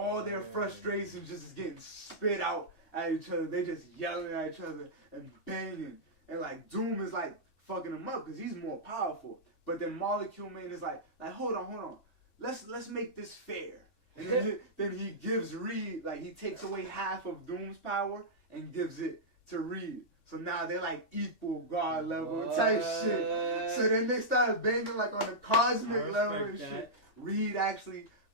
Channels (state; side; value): late; right; 2.5 ms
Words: their frustrations just getting spit out at each other. They just yelling at each other and banging. And like Doom is like fucking him up because he's more powerful. But then Molecule Man is like hold on. Let's make this fair. And then he gives Reed, like he takes away half of Doom's power and gives it to Reed. So now they're like equal God level type shit. So then they started banging like on a cosmic level and shit. Reed actually